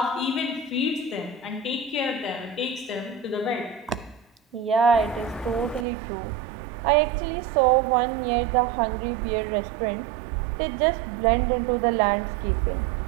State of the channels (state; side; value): drops out; left; at 5.9 s